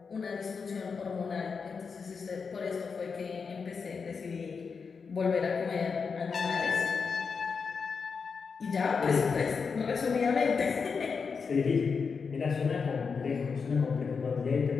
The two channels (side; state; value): right; quieter; 5.4 dB